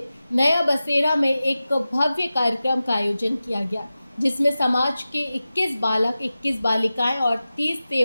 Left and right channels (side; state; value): both; inverted; correlation -0.95